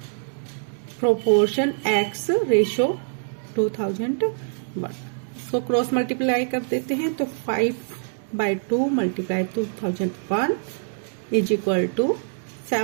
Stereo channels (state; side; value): silent; left; digital silence